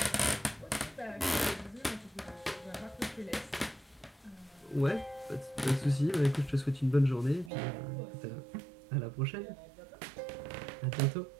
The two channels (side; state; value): left; drops out; at 7.5 s